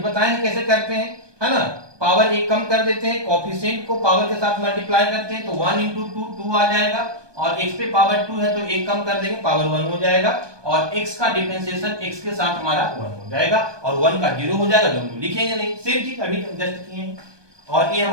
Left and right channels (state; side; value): late; left; 1.2 ms